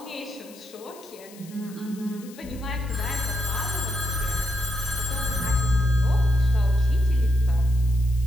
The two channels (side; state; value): left; noise; hiss, 21 dB below the sound